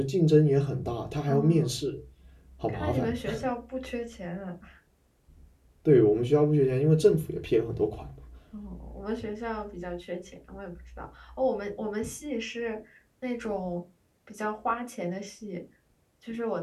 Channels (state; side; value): identical; both; correlation 1.00